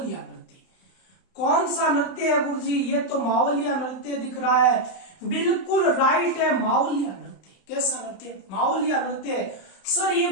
नृत्य। कौन सा नृत्य है गुरुजी? ये तो मावलिया नृत्य दिख रहा है। बिल्कुल राइट है, मावलिया नृत्य। कैसा नृत्य? मावलिया नृत्य। सर ये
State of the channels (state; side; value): late; right; 31 ms